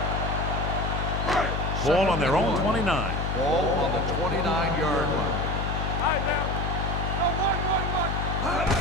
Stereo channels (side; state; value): left; noise; hum, 1 dB below the sound